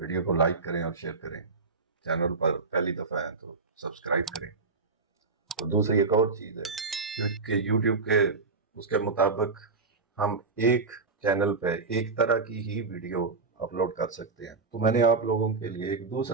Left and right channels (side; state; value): left; quieter; 4.2 dB